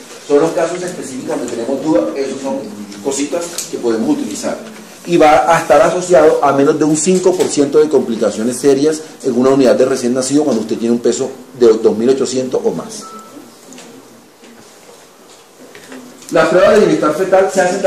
Son los casos específicos donde tenemos dudas, esos son cositas que podemos utilizar. Y va a estar asociado a menos de un 5% de complicaciones serias en una unidad de recién nacido cuando usted tiene un peso de 2.800 o más. Las pruebas de bienestar fetal se hacen de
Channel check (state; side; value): identical; both; correlation 1.00